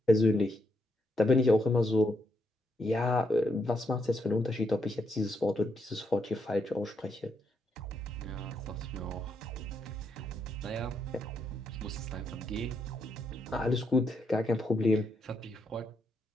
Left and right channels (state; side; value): normal; both; correlation 0.79